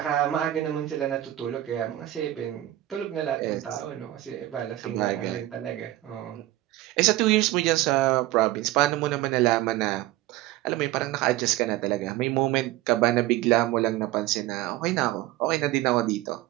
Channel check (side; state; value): left; quieter; 15.4 dB